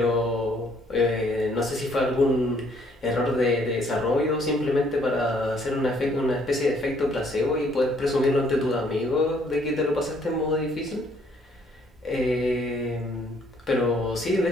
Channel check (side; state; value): both; normal; correlation 0.65